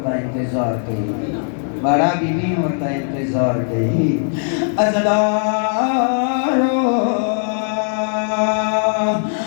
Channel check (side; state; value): right; silent; 67 dB below the other